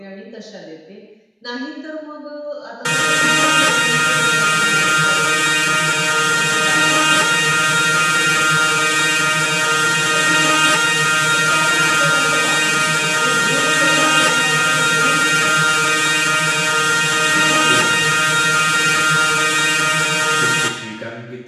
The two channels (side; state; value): both; identical; correlation 1.00